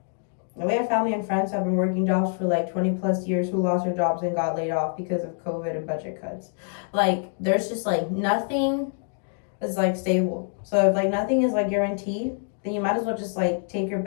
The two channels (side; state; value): right; silent; 61 dB below the other